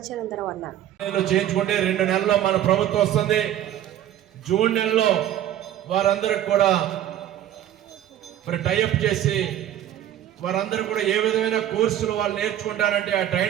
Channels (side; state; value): left; quieter; 11.7 dB